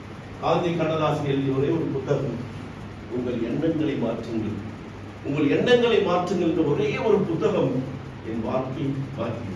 ஆதி கண்ணதாசன் எழுதிய ஒரே ஒரு புத்தகம், உங்கள் எண்ணங்களை மாற்றுங்கள். உங்கள் எண்ணங்களை மாற்றுங்கள் என்ற ஒரே ஒரு புத்தகம் என் வாழ்க்கை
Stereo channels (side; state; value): both; identical; correlation 1.00